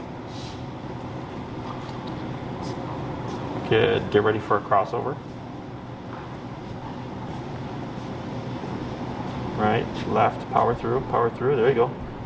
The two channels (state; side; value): identical; both; correlation 1.00